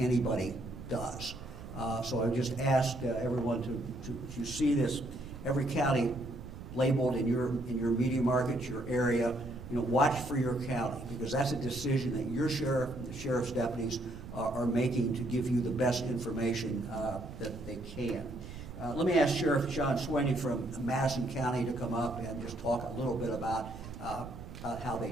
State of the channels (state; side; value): noise; right; rumble, 12 dB below the sound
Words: does. So I just ask everyone to see this, every county labeled in your media market, your area, watch for your county, because that's a decision that your sheriff and the sheriff's deputies are making to give you the best information that they can. Let me ask Sheriff John Sweeney from Madison County to come up and just talk a little bit about how they